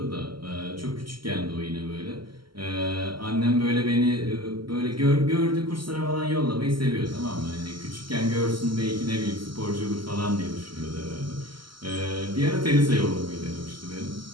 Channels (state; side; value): late; left; 0.73 ms